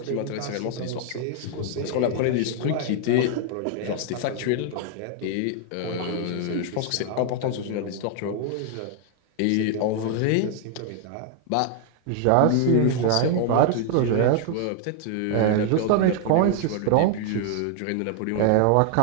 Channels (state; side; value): different; both; correlation 0.00